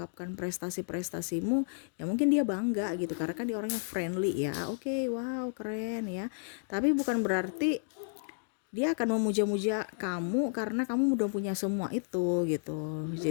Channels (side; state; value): right; silent; digital silence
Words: prestasi-prestasimu, ya mungkin dia bangga gitu karena kan dia orangnya friendly ya. Oke, wow, keren ya. Tapi bukan berarti dia akan memuja-muja kamu karena kamu udah punya semua itu gitu.